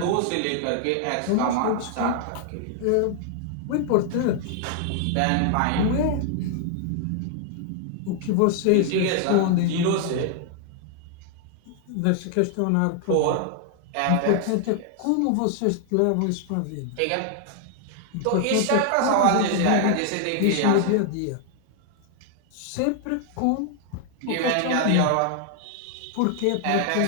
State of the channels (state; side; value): different; both; correlation 0.00